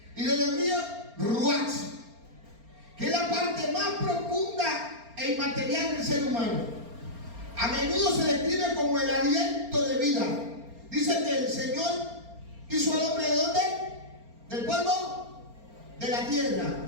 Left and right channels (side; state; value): left; late; 4.3 ms